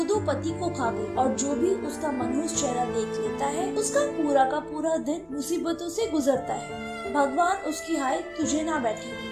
पति को खा गई और जो भी उसका मनहूस चेहरा देख लेता है उसका पूरा का पूरा दिन मुसीबतों से गुजरता है। भगवान उसकी हाय तुझे ना बैठे।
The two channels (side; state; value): both; identical; correlation 1.00